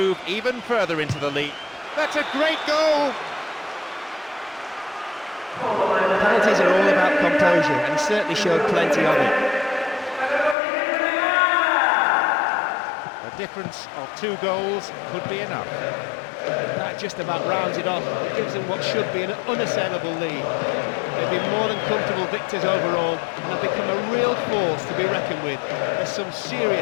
even further into the lead. That's a great goal! Penalties are all about composure, and he certainly showed plenty of it. A difference of 2 goals could be enough. That just about rounds it off. It gives them what should be an unassailable lead. They've been more than comfortable victors overall, and have become a real force to be reckoned with. There's some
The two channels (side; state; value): right; drops out; at 10.6 s